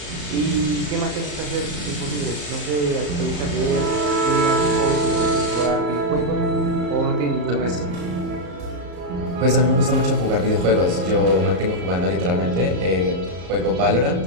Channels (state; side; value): late; left; 34 ms